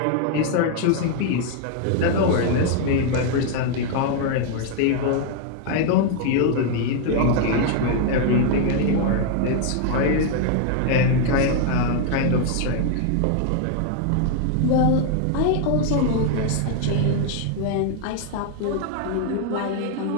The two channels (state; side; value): different; both; correlation 0.00